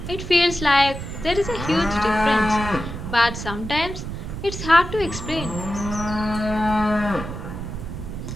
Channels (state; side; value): noise; right; rumble, 8 dB below the sound